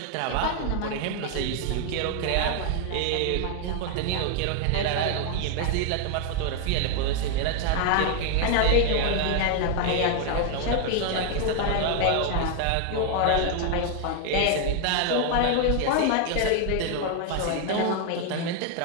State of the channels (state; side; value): different; both; correlation 0.00